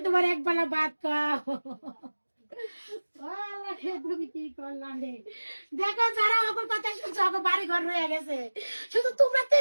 তোমার এক বেলা ভাত খাও। তুমি কি করলাম রে? দেখো যারা ওকে কথা শুনছো ওকে বাড়ি ঘর রয়ে গেছে, শুধু তোমরা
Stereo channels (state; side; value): inverted; both; correlation -1.00